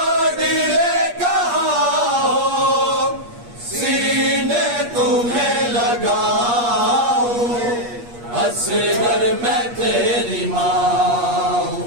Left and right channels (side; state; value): left; late; 8.4 ms